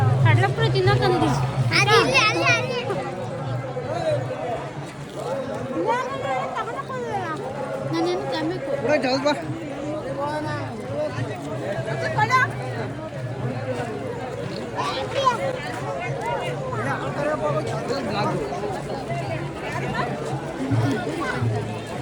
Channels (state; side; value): identical; both; correlation 1.00